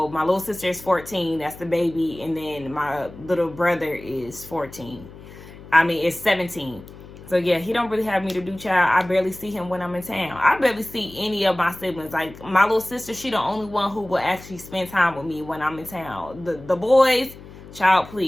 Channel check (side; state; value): left; noise; hum, 17 dB below the sound